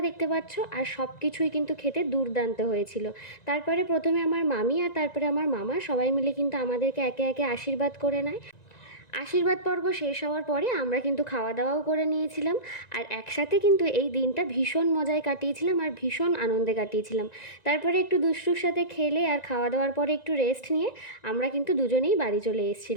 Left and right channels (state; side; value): late; right; 1.9 ms